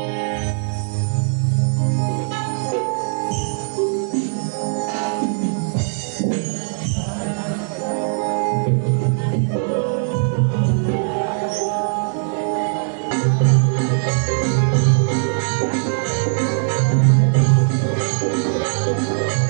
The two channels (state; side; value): silent; left; digital silence